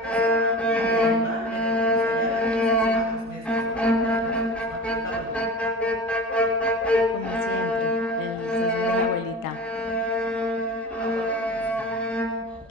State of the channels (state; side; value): normal; both; correlation 0.35